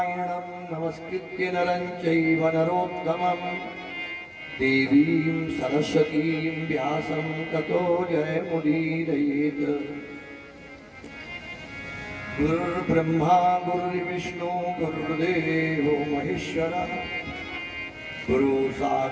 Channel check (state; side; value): identical; both; correlation 1.00